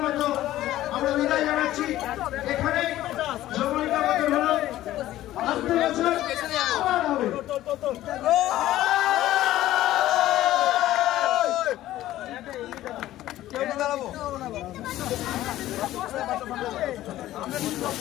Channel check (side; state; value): right; quieter; 14.5 dB